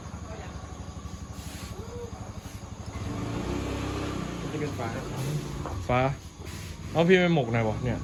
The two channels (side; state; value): both; identical; correlation 1.00